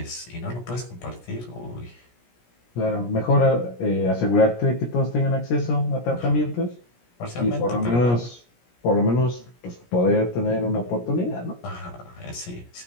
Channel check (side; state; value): right; late; 17 ms